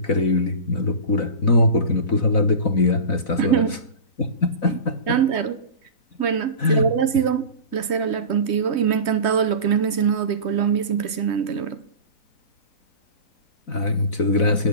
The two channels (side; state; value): right; late; 3.2 ms